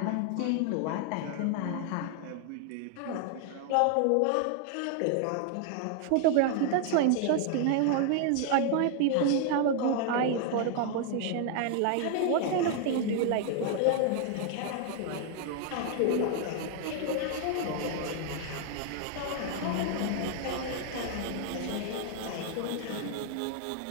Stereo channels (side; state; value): both; different; correlation 0.00